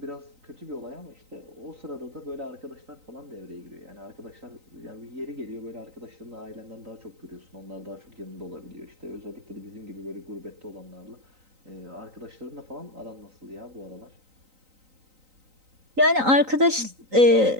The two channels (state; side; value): late; left; 3.9 ms